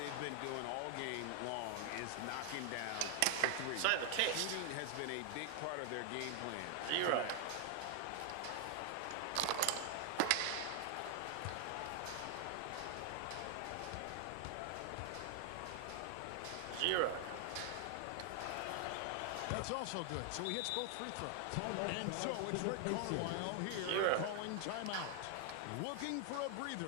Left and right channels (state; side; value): different; both; correlation 0.00